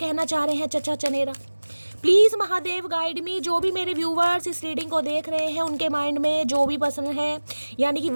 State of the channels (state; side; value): inverted; both; correlation -1.00